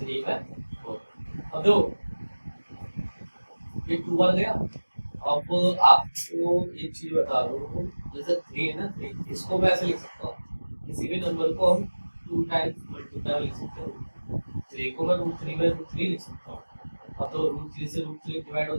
अब देखो ये 2 आ गया। अब आपको एक चीज बता दूं, जैसे 3 है ना, 3 इसको मैं ऐसे लिख सकता हूँ, किसी भी नंबर को हम 2 टाइम्स मल्टीप्लाई लिख सकते हैं। 3 को मैं √3/√3 लिख सकता हूँ। अब तो √3 से √3 डिवाइड हो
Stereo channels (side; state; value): both; inverted; correlation -1.00